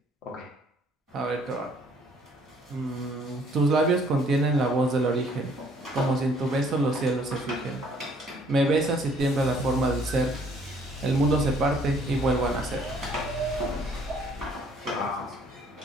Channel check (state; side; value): normal; both; correlation 0.61